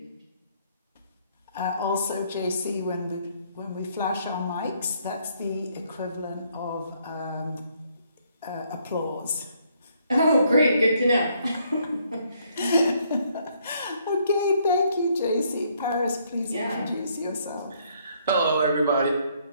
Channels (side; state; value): both; inverted; correlation -0.69